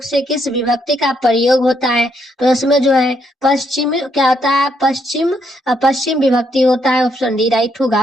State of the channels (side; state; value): both; normal; correlation 0.74